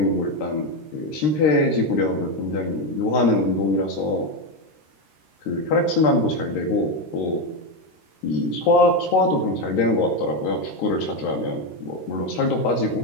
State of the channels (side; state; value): right; late; 13 ms